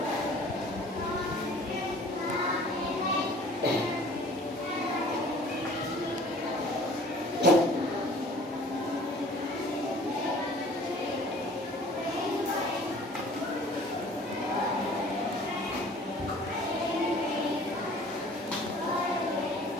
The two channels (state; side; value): normal; both; correlation 0.50